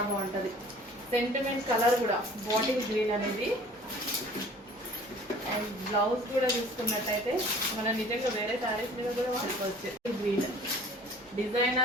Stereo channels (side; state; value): both; normal; correlation 0.48